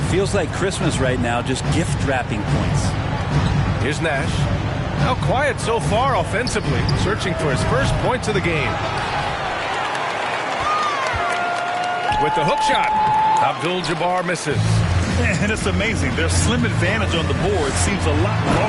feels like Christmas right now, just gift wrapping points. Here's Nash. How quiet so far offensively, searching for his first points of the game. With the hook shot, Abdul-Jabbar misses. And it's amazing. Their slim advantage on the board seems a lot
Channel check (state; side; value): identical; both; correlation 1.00